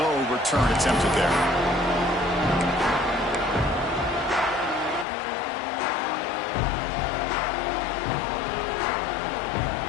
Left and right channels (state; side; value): drops out; right; at 5.1 s